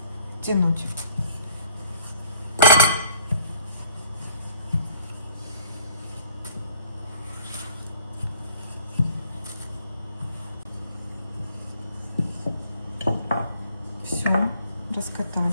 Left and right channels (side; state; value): both; inverted; correlation -0.57